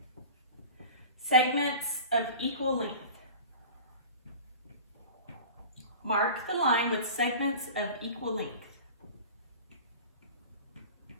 segments of equal length. Mark the line with segments of equal length.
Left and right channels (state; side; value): inverted; both; correlation -0.38